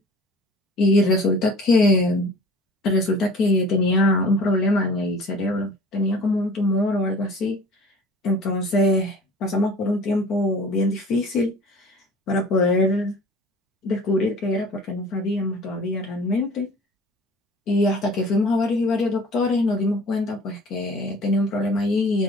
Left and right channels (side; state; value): both; normal; correlation 0.45